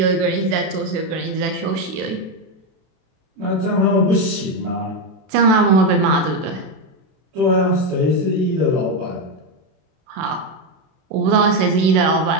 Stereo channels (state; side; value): late; left; 32 ms